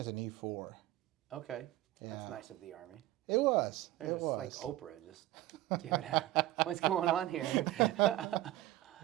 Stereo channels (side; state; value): left; quieter; 15.8 dB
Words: as an E4. Okay. Yeah. That's nice of the Army. It was. They're It just was. like Oprah, just give it out. What's going on here?